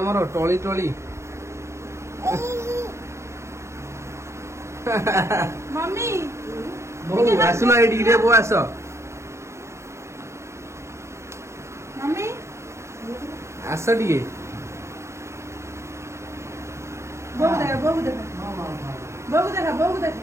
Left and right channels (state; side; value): late; left; 0.14 ms